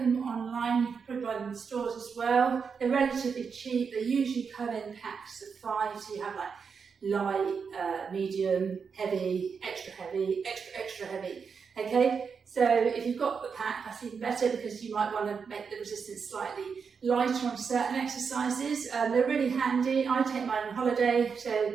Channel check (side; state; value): left; quieter; 5.9 dB